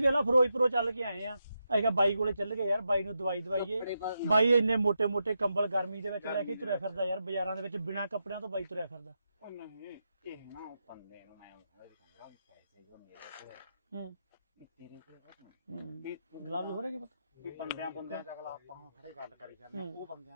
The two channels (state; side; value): inverted; both; correlation -0.85